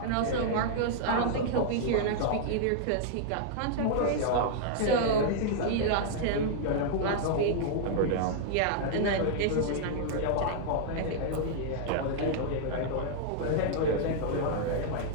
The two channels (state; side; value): different; both; correlation -0.01